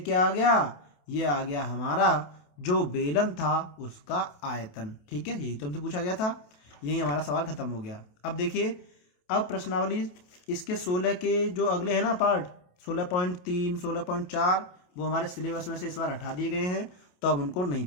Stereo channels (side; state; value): right; late; 28 ms